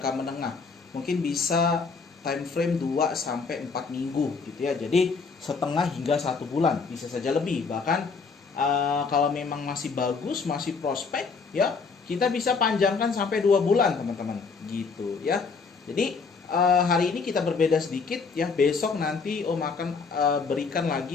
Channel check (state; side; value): quieter; right; 4.9 dB